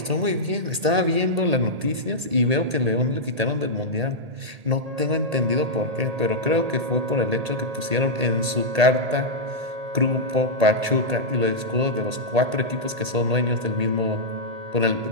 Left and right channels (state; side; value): late; left; 1.8 ms